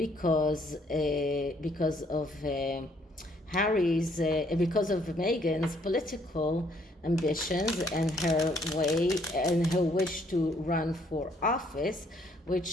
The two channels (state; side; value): normal; both; correlation 0.66